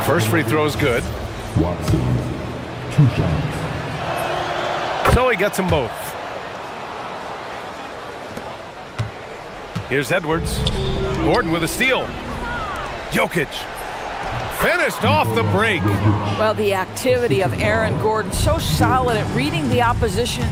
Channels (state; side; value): identical; both; correlation 1.00